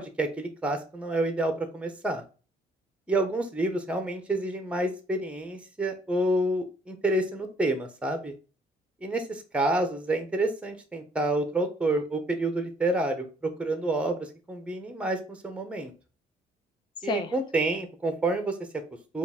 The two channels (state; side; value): normal; both; correlation 0.64